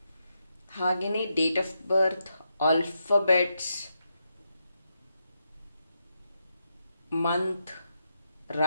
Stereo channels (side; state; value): both; inverted; correlation -0.84